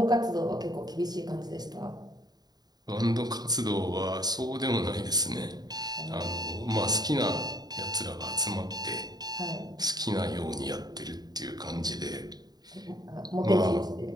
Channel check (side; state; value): left; late; 0.19 ms